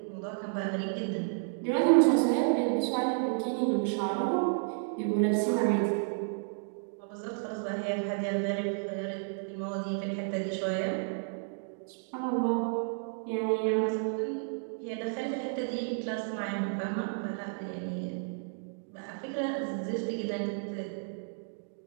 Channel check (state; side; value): silent; left; digital silence